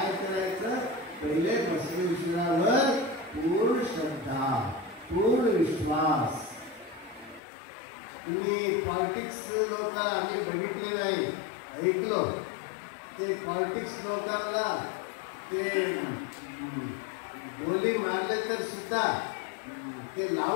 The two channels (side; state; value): right; drops out; at 7.4 s